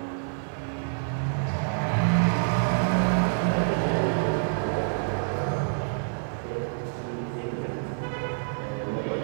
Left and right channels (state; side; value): silent; left; 60 dB below the other